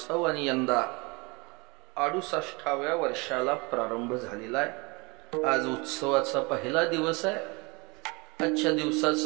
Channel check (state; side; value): quieter; left; 27.4 dB